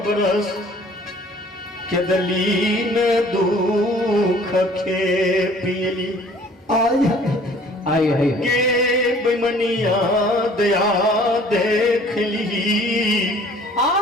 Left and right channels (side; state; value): both; normal; correlation 0.53